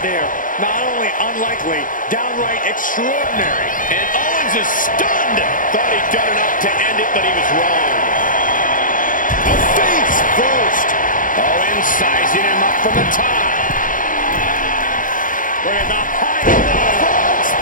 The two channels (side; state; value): right; late; 0.39 ms